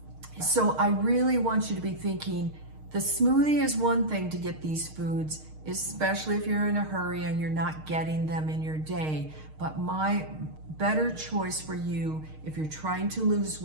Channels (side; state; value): left; late; 6.5 ms